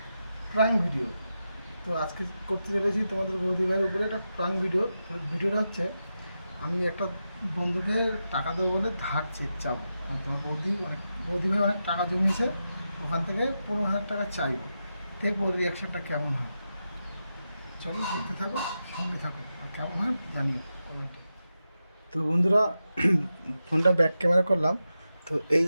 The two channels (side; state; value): both; inverted; correlation -0.89